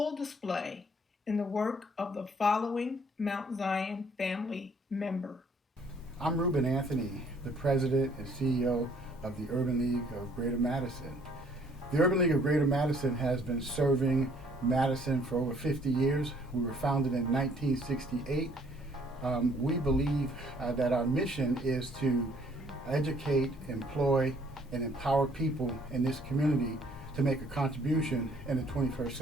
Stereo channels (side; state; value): both; normal; correlation 0.61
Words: display in the work of the following Mount Zion family member. I'm Ruben Anthony, the President and CEO of the Urban League of Greater Madison. The Urban League of Greater Madison has been serving Madison for over 50 years. We were founded in 1968. We believe that our mission is to educate, employ, and empower people in this community to make a contribution in the 21st